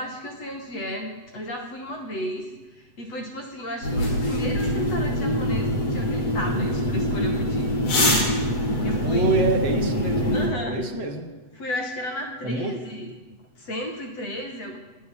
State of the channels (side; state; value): right; late; 8.0 ms